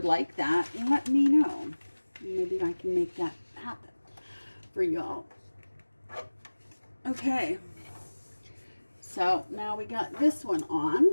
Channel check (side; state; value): both; inverted; correlation -1.00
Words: like that, let me know. Maybe I can make that happen for y'all. Okay. So now we got this one